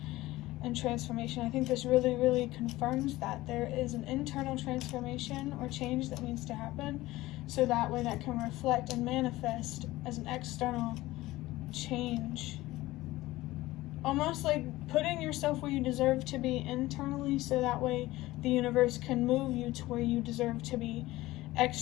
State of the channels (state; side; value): quieter; right; 17.9 dB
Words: and transformation. I think this really, really confirms that there is an internal transformation or change that needs to happen, so that way that can reflect and manifest as an external change. Almost like putting yourself where you deserve to be internally, so that way the universe can move you to where you deserve to be